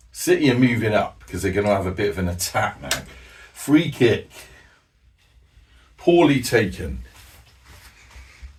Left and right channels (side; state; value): both; identical; correlation 1.00